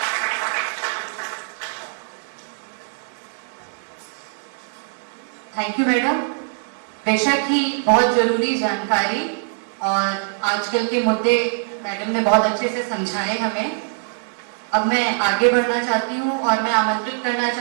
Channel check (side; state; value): left; silent; digital silence